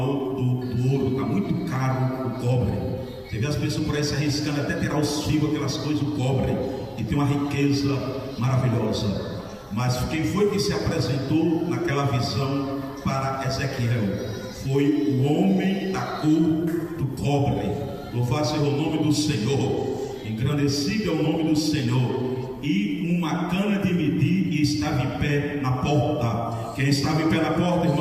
do ouro, está muito caro o cobre. Você vê as pessoas por aí se arriscando até tirar os fios, aquelas coisas do cobre, e tem uma riqueza maravilhosa. Mas quem foi que se apresentou naquela visão para Ezequiel? Foi o homem da cor do cobre. Louvado seja o nome do Senhor, engrandecido é o nome do Senhor. E uma cana de medir, e estava em pé na porta. Quem estava em pé na porta,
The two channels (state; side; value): identical; both; correlation 1.00